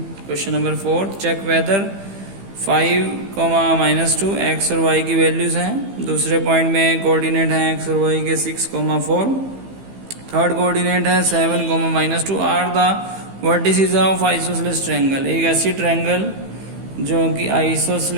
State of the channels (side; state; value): left; late; 15 ms